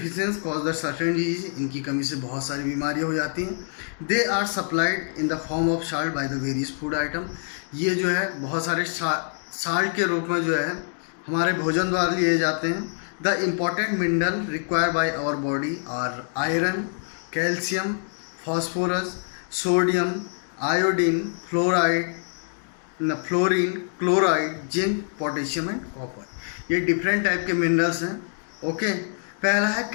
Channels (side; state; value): right; silent; digital silence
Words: cause the certain disease. इनकी कमी से बहुत सारी बीमारियां हो जाती हैं. They are supplied in the form of salt by the various food item. ये जो है बहुत सारे साल्ट के रूप में जो है हमारे भोजन द्वारा लिए जाते हैं. The important mineral required by our body are iron, calcium, phosphorus, sodium, iodine, fluorine, chloride, zinc, potassium and copper. ये डिफरेंट टाइप के मिनरल्स हैं. ओके. पहला है